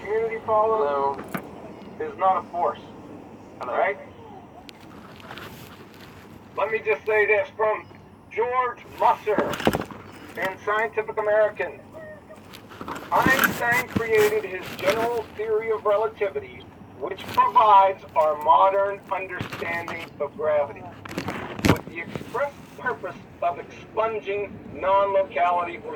follows, is not a force. Right? Let me just say this from George Musser in Scientific American. Einstein created his general theory of relativity, which provides our modern understanding of gravity, with the express purpose of expunging non-locality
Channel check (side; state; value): both; identical; correlation 1.00